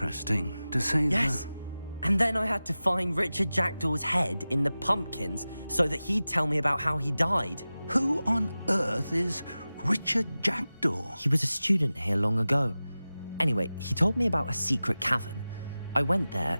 to say Yes, And then I had to find Richard Jackdaw's head in the pumpkins so that he'd tell me about how he died. Who on earth is Richard Jackdaw? He was a student here long ago. Anyway, he told me about a secret cavern. I went there,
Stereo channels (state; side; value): inverted; both; correlation -0.96